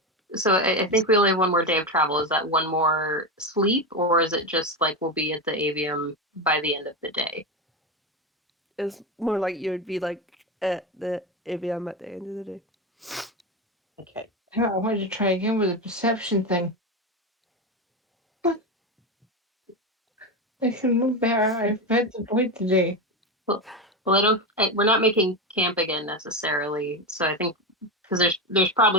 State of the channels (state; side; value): normal; both; correlation 0.16